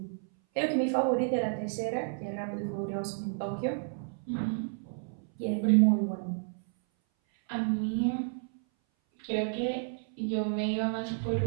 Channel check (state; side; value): silent; left; 57 dB below the other